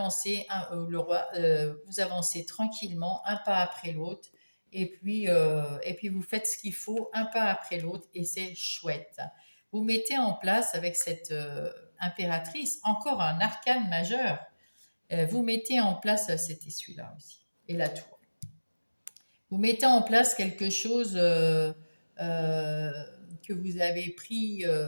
le roi, vous avancez tranquillement, un pas après l'autre. Et puis vous faites ce qu'il faut, un pas après l'autre, et c'est chouette. Vous mettez en place avec cette impératrice encore un arcane majeur. Vous mettez en place, c'était celui-là aussi, et la tour. Vous mettez en place quelque chose euh, que vous avez pris,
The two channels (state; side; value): inverted; both; correlation -1.00